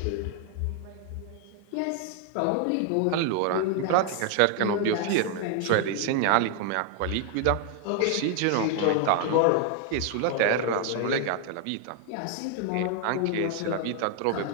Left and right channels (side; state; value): both; different; correlation 0.00